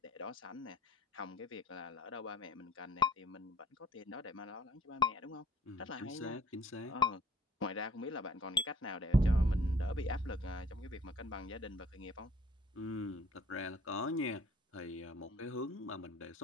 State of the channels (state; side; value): normal; both; correlation 0.54